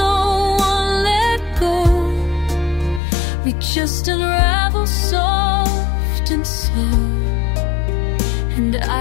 one let go. We just unravel soft and slow, and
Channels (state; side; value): drops out; right; at 3.0 s